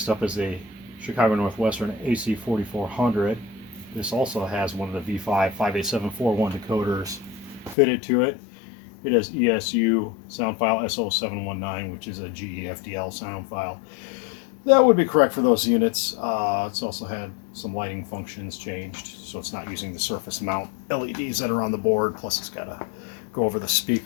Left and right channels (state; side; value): drops out; right; at 7.8 s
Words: up is a Chicago Northwestern AC4400. This also has one of the V5 58741 decoders fitted to it. It has ESU sound file S0719, which is a GE FDL sound file. That would be correct for those units. It's also had some lighting functions changed, so it's not using the surface mount LEDs that are on the board, plus it's got to go over the